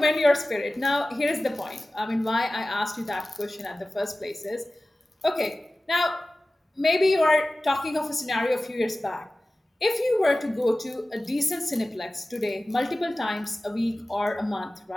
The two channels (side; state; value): both; normal; correlation 0.96